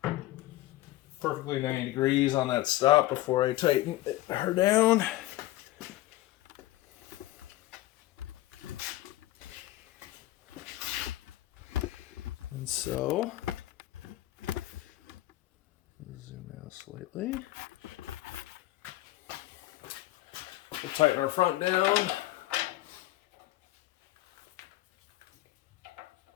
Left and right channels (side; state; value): right; quieter; 16.5 dB